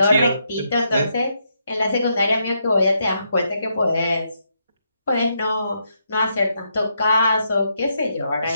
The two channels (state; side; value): inverted; both; correlation -0.79